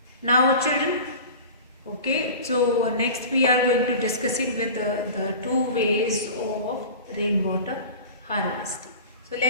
now children, okay, so next we are going to discussing with the two ways of rainwater harvesting. So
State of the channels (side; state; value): both; inverted; correlation -0.36